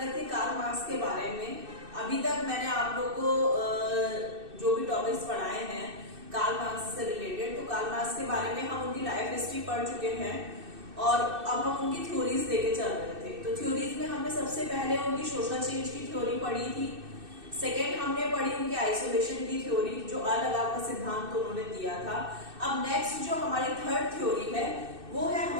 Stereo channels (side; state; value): left; late; 2.6 ms